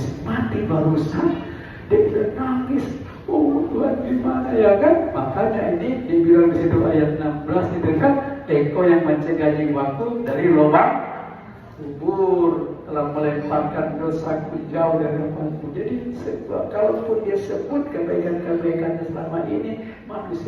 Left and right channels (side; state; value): both; identical; correlation 1.00